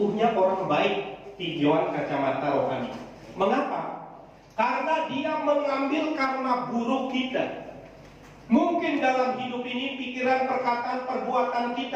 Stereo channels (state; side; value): identical; both; correlation 1.00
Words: orang baik tinjauan kacamata rohani. Mengapa? Karena dia mengambil karma buruk kita. Mungkin dalam hidup ini pikiran, perkataan, perbuatan